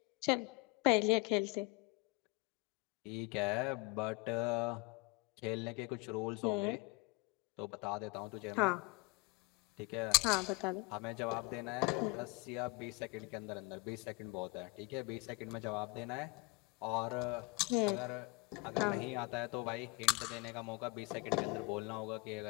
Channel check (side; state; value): right; quieter; 25.5 dB